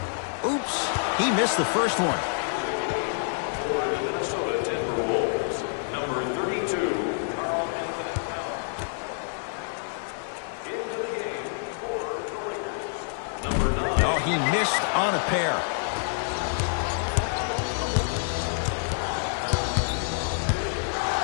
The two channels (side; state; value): right; silent; digital silence